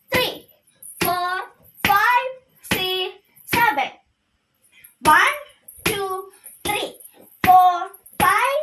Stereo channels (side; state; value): both; identical; correlation 1.00